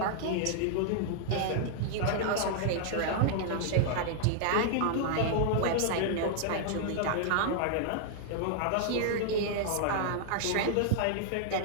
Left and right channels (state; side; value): different; both; correlation -0.01